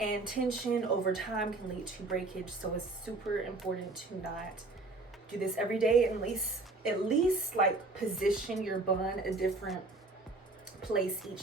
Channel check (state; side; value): quieter; left; 3.3 dB